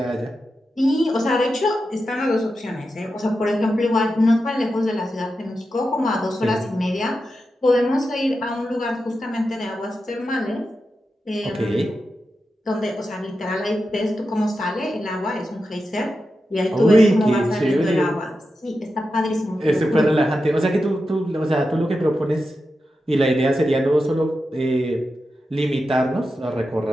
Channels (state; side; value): normal; both; correlation 0.90